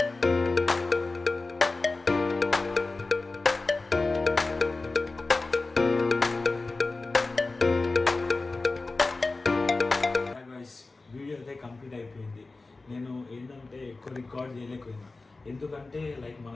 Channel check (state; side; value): quieter; right; 3.5 dB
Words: వీడియో అయితే కంప్లీట్ అయిపోయింది. నేను ఏంటంటే ఎక్కువ రికార్డ్ చేయలేకపోయినా ఎందుకంటే లైక్